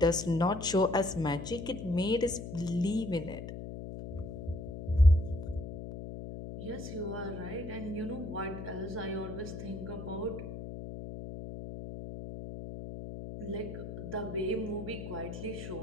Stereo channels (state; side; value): noise; left; hum, 8 dB below the sound